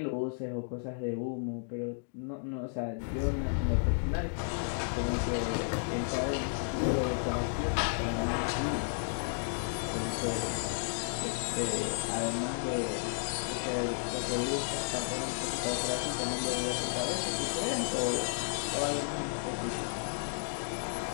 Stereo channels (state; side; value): silent; right; digital silence